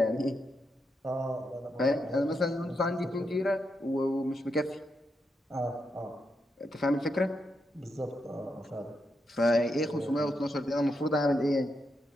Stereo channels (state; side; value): normal; both; correlation 0.83